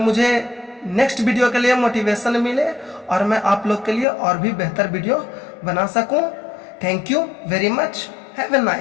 मुझे नेक्स्ट वीडियो के लिए मोटिवेशन मिले और मैं आप लोग के लिए और भी बेहतर वीडियो बना सकूं। Thank you very much. Have a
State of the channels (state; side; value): drops out; right; at 4.0 s